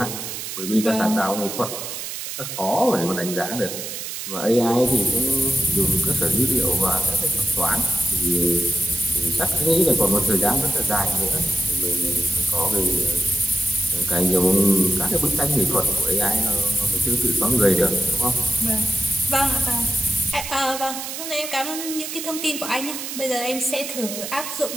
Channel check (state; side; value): noise; right; hiss, 7 dB below the sound